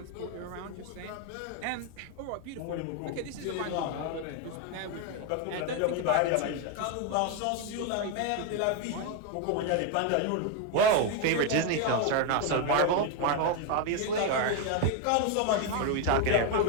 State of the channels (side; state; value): both; different; correlation 0.01